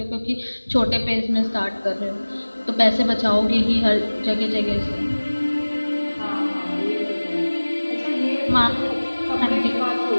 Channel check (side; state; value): both; inverted; correlation -1.00